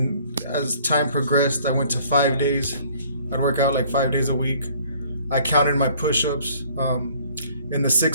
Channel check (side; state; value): both; inverted; correlation -0.57